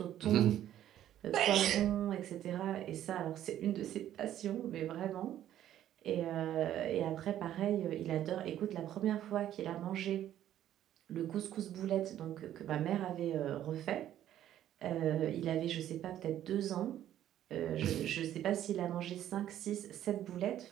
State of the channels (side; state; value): left; quieter; 11.8 dB